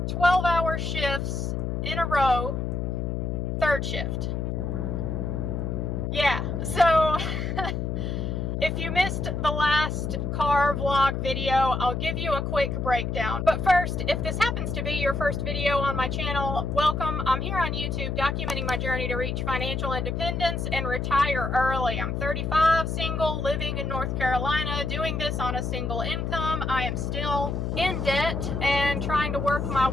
12-hour shifts in a row, third shift. Yeah, so if you missed the last car vlog video, I'll give you a quick breakdown. But first, if this happens to be your first video on my channel, welcome. I'm here on YouTube documenting my journey to reach financial independence and retire early. I'm 35, single, living in North Carolina, doing this on a single income. I am still in debt and trying to work my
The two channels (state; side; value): noise; left; hum, 2 dB below the sound